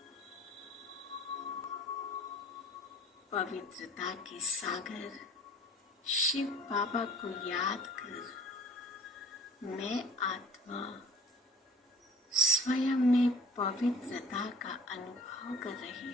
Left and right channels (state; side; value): normal; both; correlation 0.48